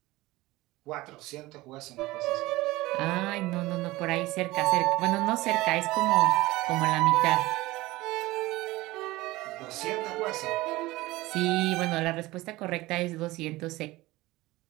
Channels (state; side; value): quieter; left; 19.3 dB